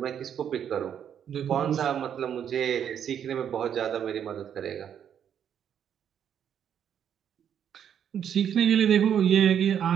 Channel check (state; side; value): quieter; left; 8.9 dB